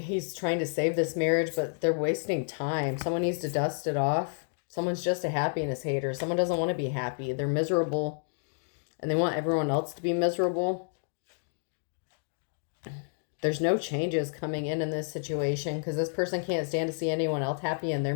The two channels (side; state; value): right; silent; digital silence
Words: trying to save this marriage, but they're wasting time. Someone needs to dust it off. Someone's just a happiness hater. Someone doesn't want to be happy. They're miserable, and they want everyone else to be miserable. There's no changes coming in this situation because this person can't stand to see anyone else happy and they're